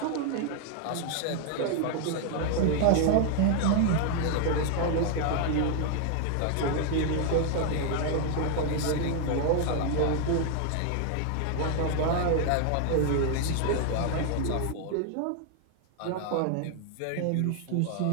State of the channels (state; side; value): different; both; correlation 0.00